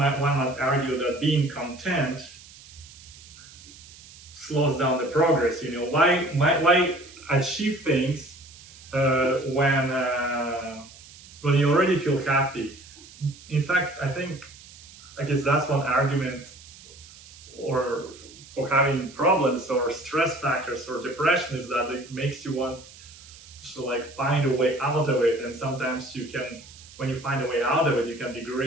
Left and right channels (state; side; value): noise; right; hiss, 20 dB below the sound